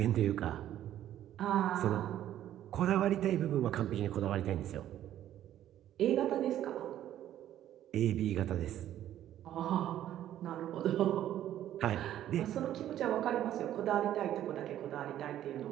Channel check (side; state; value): left; quieter; 12.0 dB